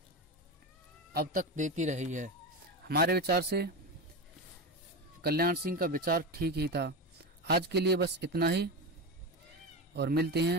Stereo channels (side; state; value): both; normal; correlation 0.20